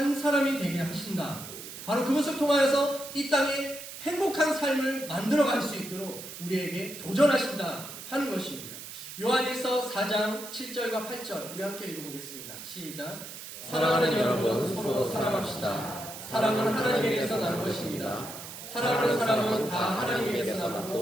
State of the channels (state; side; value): noise; right; hiss, 11 dB below the sound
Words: 사람이 되게 하신다. 바로 그것을 통하여서 이 땅에 행복한 삶을 만들어갈 수 있도록 우리에게 도전하신다 하는 것입니다. 요한일서 4장 7절과 8절 우리 함께 읽어보겠습니다. 시작. 사랑하는 여러분 서로 사랑합시다. 사랑은 하나님에게서 난 것입니다. 사랑하는 사람은 다 하나님에게서